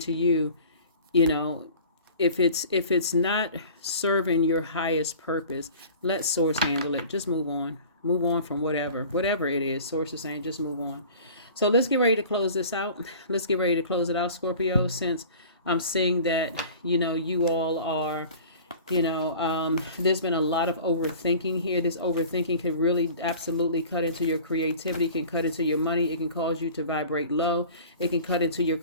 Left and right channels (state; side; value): inverted; both; correlation -0.43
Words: you, you know, if it's not serving your highest purpose, let Source handle it. Just move on. Move on from whatever it is. Source is saying, just move on. So let's get ready to close this out. Let's get ready to close it out, Scorpio, since I'm seeing that, you know, you all are, you know, there's been a lot of overthinking here. This overthinking can really absolutely cut into your creativity, can cut into your money. It can cause you to vibrate low. It can cut into your